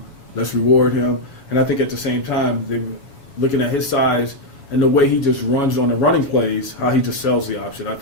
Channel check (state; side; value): late; right; 7.1 ms